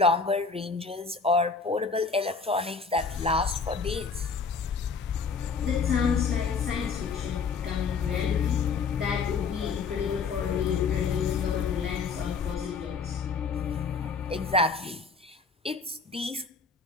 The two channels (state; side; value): quieter; right; 5.1 dB